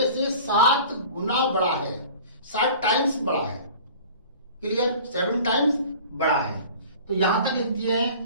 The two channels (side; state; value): both; inverted; correlation -0.43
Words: से 7 गुना बड़ा है, 7 टाइम्स बड़ा है। क्लियर? 7 टाइम्स बड़ा है। तो यहां तक लिखते